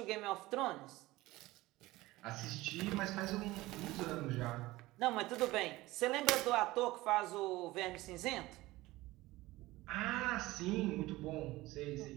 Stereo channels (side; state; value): left; quieter; 18.8 dB